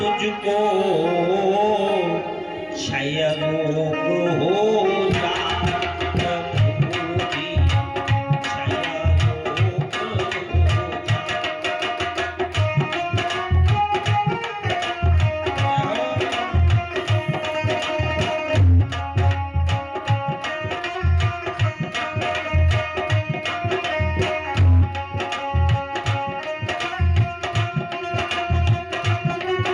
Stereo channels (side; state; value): both; identical; correlation 1.00